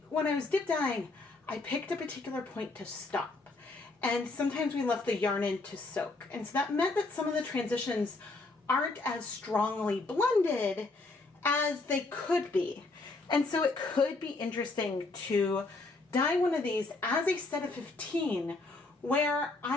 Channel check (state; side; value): quieter; right; 3.4 dB